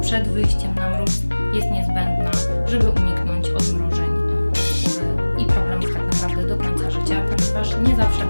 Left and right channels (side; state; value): both; inverted; correlation -1.00